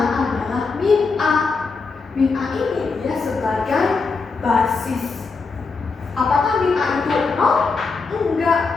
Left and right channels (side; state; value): right; quieter; 4.4 dB